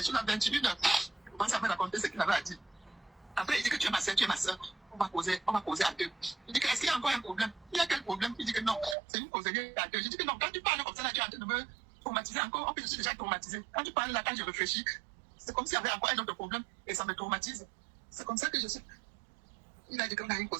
choses à 21h. Il commence à me raconter ce qu'il avait à dire. Après, il dit que tu es ma soeur, tu es ma soeur. On va causer à deux. Il dit que est-ce qu'il y a encore un problème? Il y a quel problème? Il dit que non, c'est une causerie à deux. Je dis que non, quand tu parles comme ça, là, tu es en train de me traumatiser encore. En plus, je suis déjà traumatisé. Quand tu parles là, quand je réfléchis, c'est comme s'il y avait encore un autre problème et ça me traumatise. C'est comme ça que je suis. Il a dit qu'on a une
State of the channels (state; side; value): drops out; left; at 9.0 s